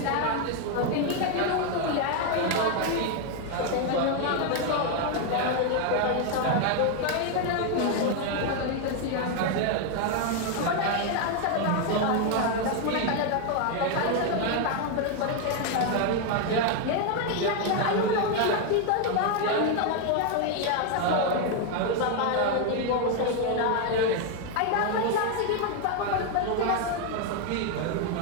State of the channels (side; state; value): both; different; correlation 0.01